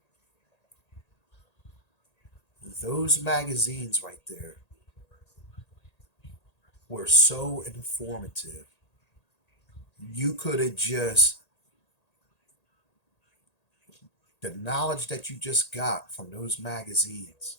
Those magazines right there were so informative. You could have just, the knowledge that you just got from those magazines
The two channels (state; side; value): late; right; 1.8 ms